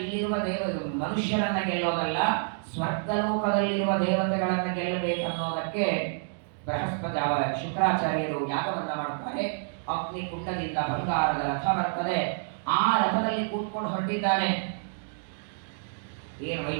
ಇಲ್ಲಿರುವ ಮನುಷ್ಯರನ್ನ ಗೆಲ್ಲೋದಲ್ಲ, ಸ್ವರ್ಗಲೋಕದಲ್ಲಿರುವ ದೇವತೆಗಳನ್ನ ಗೆಲ್ಲಬೇಕನ್ನೋದಕ್ಕೆ ಬೃಹಸ್ಪತಿ ಶುಕ್ರಾಚಾರ್ಯರು ಯಾಗವನ್ನ ಮಾಡುತ್ತಾರೆ. ಅಗ್ನಿ ಕುಂಡದಿಂದ ಬಂಗಾರದ ರಥ ಬರ್ತದೆ. ಆ ರಥದಲ್ಲಿ ಕೂತ್ಕೊಂಡು ಹೊರಟಿದ್ದಾನೆ. ಏನು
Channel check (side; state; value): left; silent; digital silence